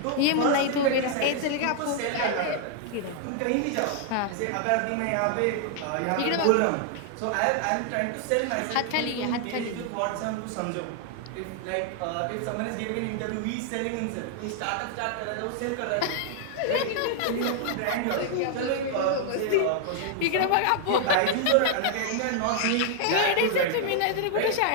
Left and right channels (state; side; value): different; both; correlation 0.00